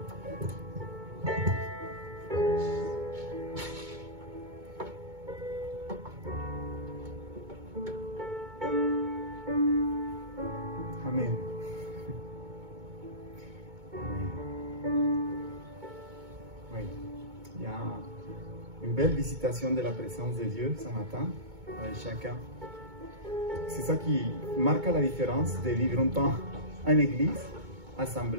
Amen. Oui. Il y a une belle visitation de la présence de Dieu ce matin avec chacun. C'est ça qui marque la différence de vivre un temps en église,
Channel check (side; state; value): left; late; 2.2 ms